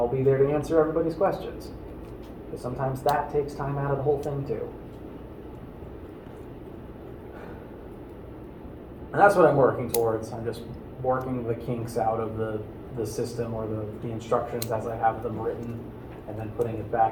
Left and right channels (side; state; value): both; identical; correlation 1.00